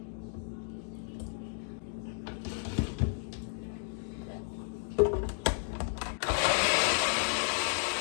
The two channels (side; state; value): right; silent; digital silence